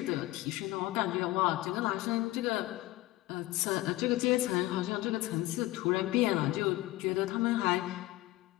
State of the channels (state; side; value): quieter; right; 17.7 dB